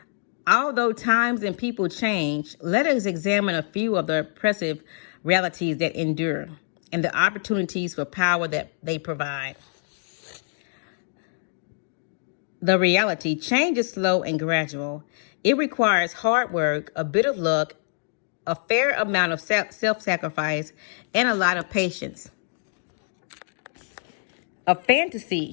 Although times and people change, let us examine a few of the oppressive realities that endure and the opportunities for power that they provide. The reality: change is slow and gradual. It requires hard work, a bit of luck, a fair amount of self-sacrifice, and a lot of patience. A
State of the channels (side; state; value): right; silent; digital silence